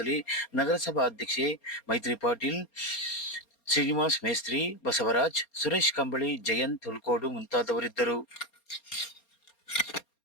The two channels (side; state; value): right; late; 4.3 ms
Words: ನಗರಸಭಾ ಅಧ್ಯಕ್ಷೆ ಮೈತ್ರಿ ಪಾಟೀಲ್, ಶ್ರೀನಿವಾಸ್ ಮೇಸ್ತ್ರಿ, ಬಸವರಾಜ್, ಸುರೇಶ್ ಕಂಬಳಿ, ಜಯಂತ್ ಹುಲ್ಕೋಡು ಮುಂತಾದವರಿದ್ದರು.